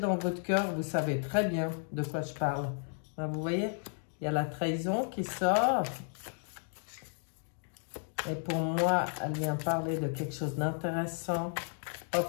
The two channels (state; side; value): silent; right; 55 dB below the other